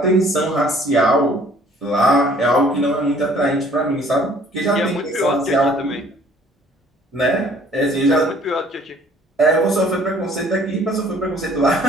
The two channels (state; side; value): normal; both; correlation 0.57